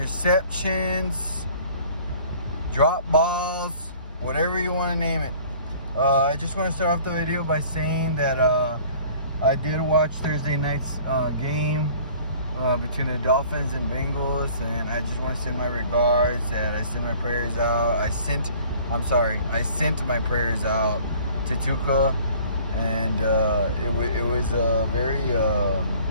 drop balls, whatever you want to name it. I just want to start off the video by saying that I did watch Thursday night's game between the Dolphins and Bengals, and I just want to send my regards. That I sent my prayers out. I sent my prayers out to Tuca, and it was very.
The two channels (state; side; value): inverted; both; correlation -0.51